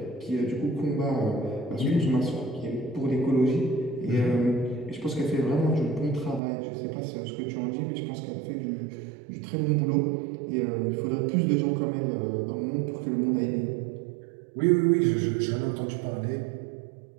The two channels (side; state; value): left; drops out; at 6.4 s